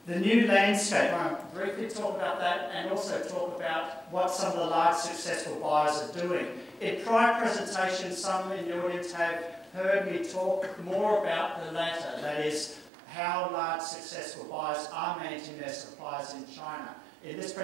The new landscape, I want to briefly talk about that, and also talk about what some of the large successful buyers are doing. In prior presentations, some in the audience have heard me talk more about the latter, that is, how large successful buyers are managing their suppliers in China. In this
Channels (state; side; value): drops out; left; at 12.9 s